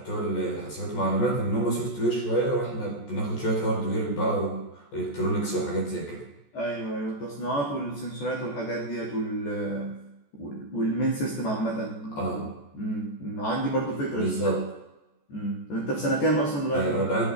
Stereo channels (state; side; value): late; right; 14 ms